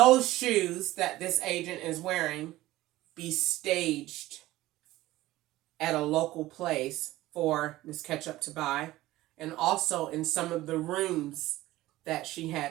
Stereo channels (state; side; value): quieter; left; 16.7 dB